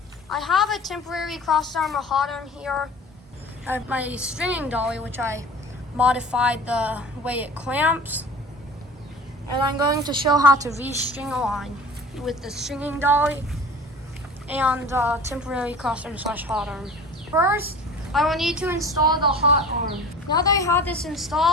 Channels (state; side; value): normal; both; correlation 0.40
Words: I have a temporary cross arm, a hot arm here. I have my stringing dolly, which I modified the way it clamps. And I'm going to show how to restring a line with the stringing dolly and temporary cross arm / hot arm. First, I will need to install the hot arm. Now that I have this